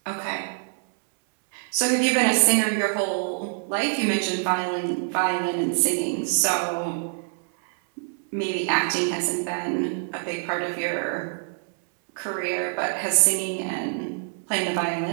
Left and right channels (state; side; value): silent; left; 62 dB below the other